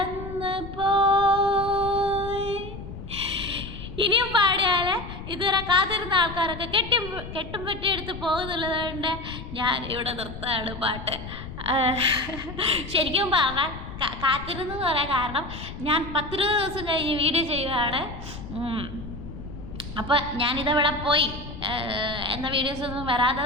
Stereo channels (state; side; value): noise; left; rumble, 11 dB below the sound